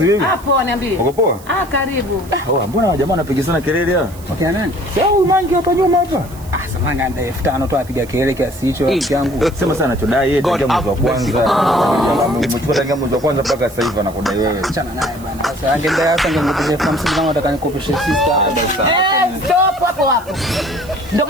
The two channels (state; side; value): noise; right; hiss, 21 dB below the sound